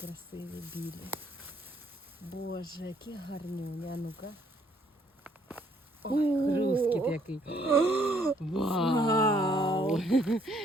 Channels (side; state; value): both; normal; correlation 0.66